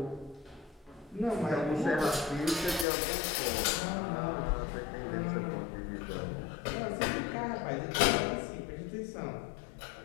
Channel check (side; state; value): right; drops out; at 2.9 s